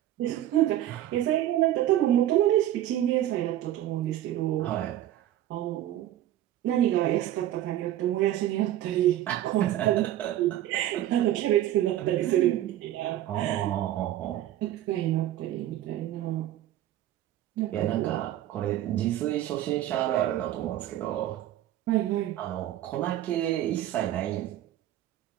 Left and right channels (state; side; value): quieter; left; 12.9 dB